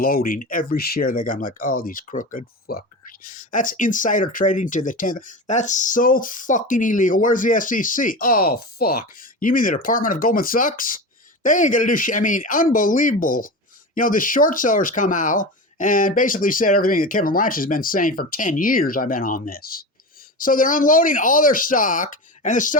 every share they got. I'm like, oh, these crooked fuckers. That's insider trading to the 10th. That's so fucking illegal. Where's the SEC? Oh, fuck. You mean the Department of Goldman Sachs? They ain't going to do shit. I mean, unbelievable. The short sellers come out and basically said everything that Kevin Blanch has been saying for 10 years. I've been on this. So they're unloading all their stock, and the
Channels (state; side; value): normal; both; correlation 0.26